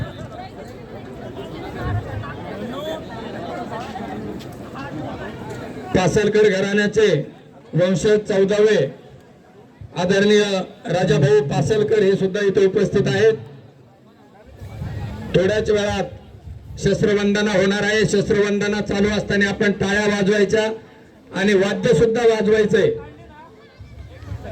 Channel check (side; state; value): both; identical; correlation 1.00